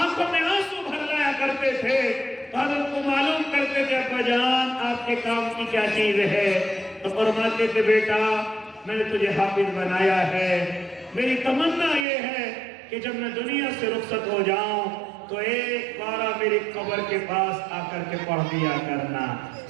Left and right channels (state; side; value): drops out; left; at 12.1 s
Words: میں آنسو بھر لایا کرتے تھے، حضرت کو معلوم کرتے تھے ابا جان آپ کے کام کی کیا چیز ہے، تو فرماتے تھے بیٹا میں نے تجھے حافظ بنایا ہے، میری تمنا یہ ہے کہ جب میں دنیا سے رخصت ہو جاؤں تو ایک بارہ میری قبر کے پاس آ کر کے پڑھ دیا کرنا،